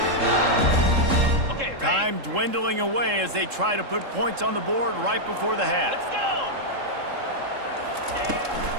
Okay, ready? Time dwindling away as they try to put points on the board right before the half. Let's go!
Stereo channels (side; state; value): left; late; 3.7 ms